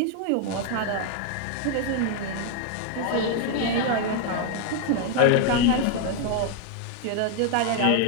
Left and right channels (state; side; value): different; both; correlation 0.01